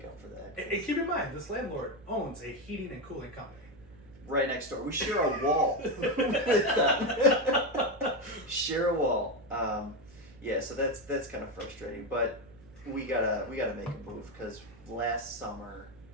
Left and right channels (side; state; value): right; noise; hum, 23 dB below the sound